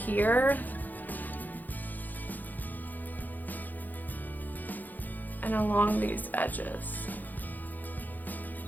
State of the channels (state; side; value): late; right; 0.084 ms